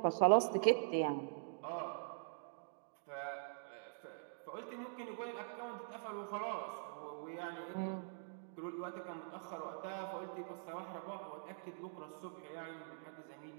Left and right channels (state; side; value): silent; left; digital silence